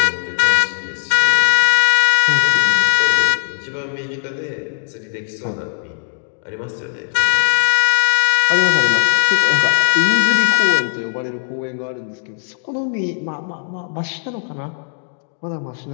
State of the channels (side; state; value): right; silent; digital silence